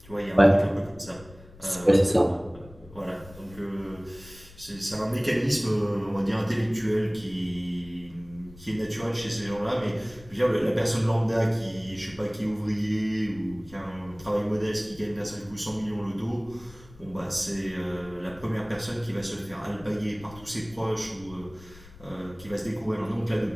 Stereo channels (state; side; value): noise; left; rumble, 20 dB below the sound